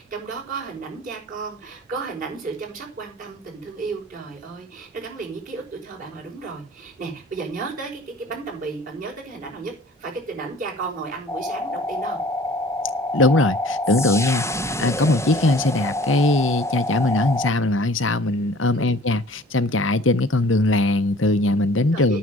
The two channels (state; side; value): normal; both; correlation 0.49